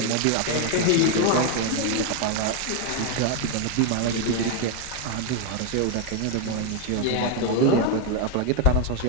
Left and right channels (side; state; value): both; different; correlation 0.01